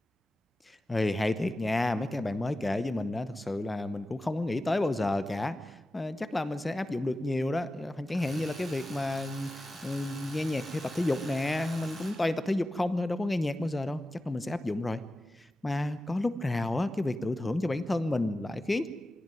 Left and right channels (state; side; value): normal; both; correlation 0.94